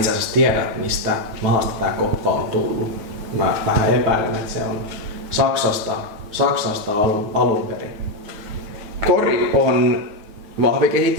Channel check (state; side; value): late; left; 9.3 ms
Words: asiassa tiedä, mistä maasta tää koppa on tullut. Mä vähän epäilen, että se on Saksasta alun perin. Kori on